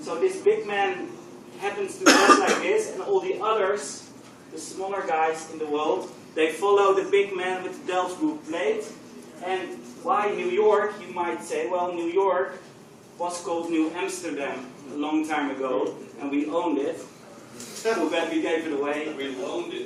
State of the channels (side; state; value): both; identical; correlation 1.00